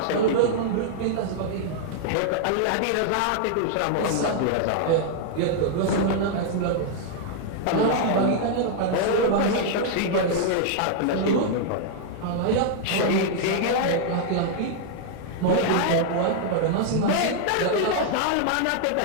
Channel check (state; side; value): different; both; correlation -0.01